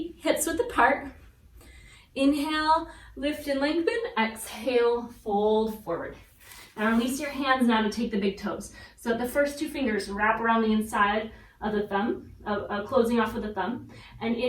hips width apart. Inhale, lift and lengthen. Exhale, fold forward. Now release your hands now to take the big toes. So the first two fingers wrap around the inside of the thumb, closing off with the thumb. And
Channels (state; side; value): identical; both; correlation 1.00